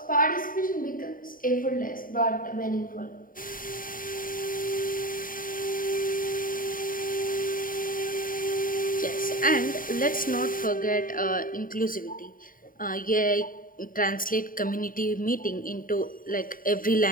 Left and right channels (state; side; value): late; right; 0.40 ms